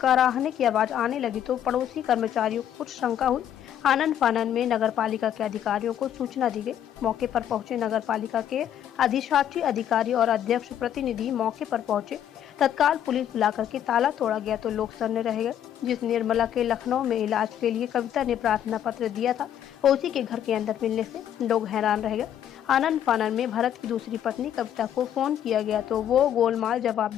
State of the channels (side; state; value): right; quieter; 10.2 dB